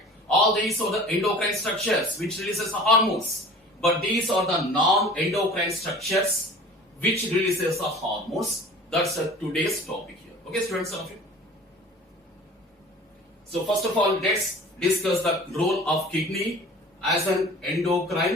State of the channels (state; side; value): normal; both; correlation 0.44